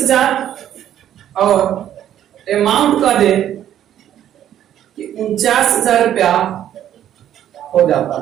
और अमाउंट का दे कि 49,000 रुपया हो जाता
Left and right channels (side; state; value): left; quieter; 11.0 dB